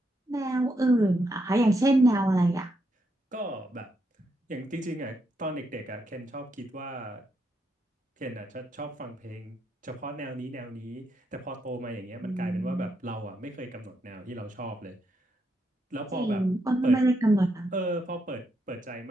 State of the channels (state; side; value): normal; both; correlation 0.80